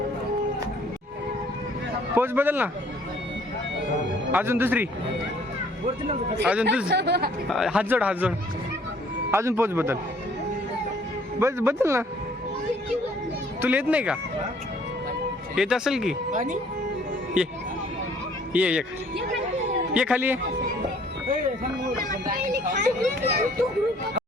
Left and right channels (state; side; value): normal; both; correlation 0.59